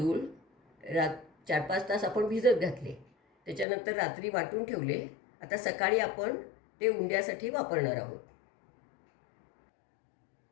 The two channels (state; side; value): drops out; right; at 3.7 s